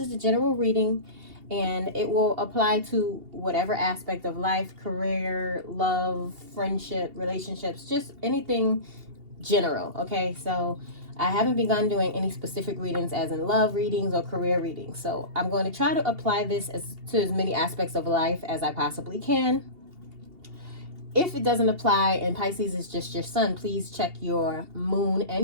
the general reading and it will apply to whatever aspect of life, career, love, friendship, relationships, just anything general. Okay, so I haven't begun doing any specific readings as in love readings or career readings. So I'm going to try to apply this to as many aspects of life as I possibly can. If it doesn't apply and Pisces is just your sun, please check your moon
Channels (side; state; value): left; late; 2.8 ms